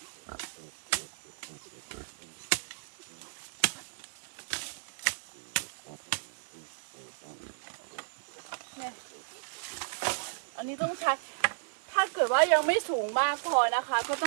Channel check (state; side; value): silent; left; digital silence